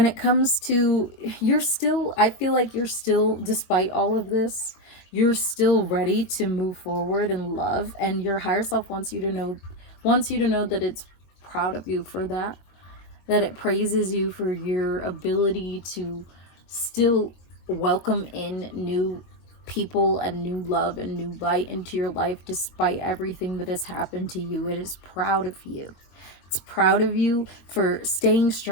it comes to, you're still, I feel like you're still, despite all of this, you're still ready to move forward in love, and your higher self wants you to know that it's proud of you for that it praises you for your ability to still welcome in new people and new love and new light into your life despite everything that has happened to you. It is proud of you. It's proud of you for staying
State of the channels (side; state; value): right; late; 22 ms